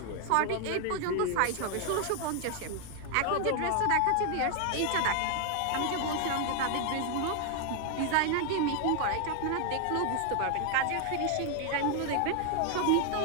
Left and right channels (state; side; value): different; both; correlation 0.00